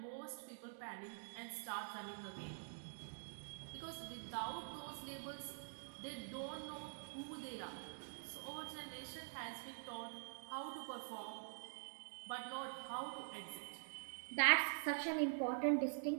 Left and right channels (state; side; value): silent; left; digital silence